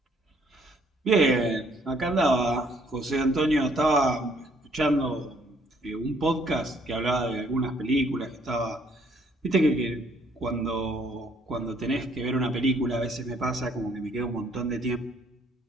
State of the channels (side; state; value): both; normal; correlation 0.65